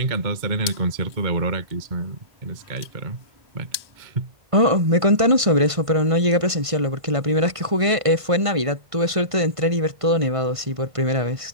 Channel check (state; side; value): late; left; 1.5 ms